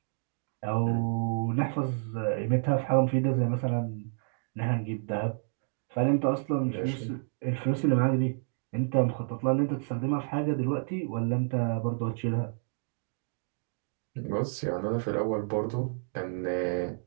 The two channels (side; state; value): left; silent; digital silence